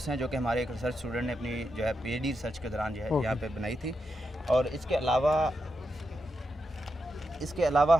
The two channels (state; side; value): normal; both; correlation 0.85